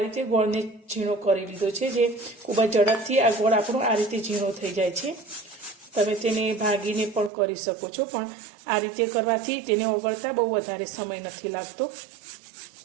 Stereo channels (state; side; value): drops out; left; at 7.3 s